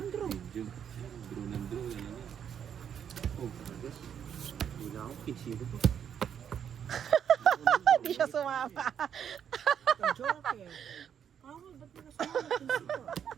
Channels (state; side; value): quieter; left; 8.5 dB